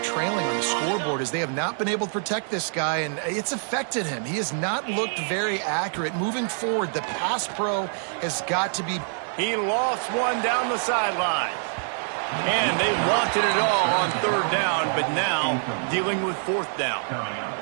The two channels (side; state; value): left; silent; 60 dB below the other